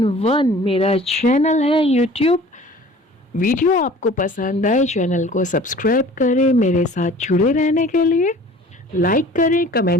मेरा चैनल है यूट्यूब। वीडियो आपको पसंद आए, चैनल को सब्सक्राइब करें। मेरे साथ जुड़े रहने के लिए लाइक करें,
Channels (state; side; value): normal; both; correlation 0.46